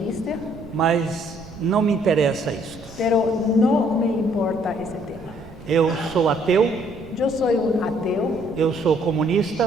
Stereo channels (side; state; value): right; noise; rumble, 19 dB below the sound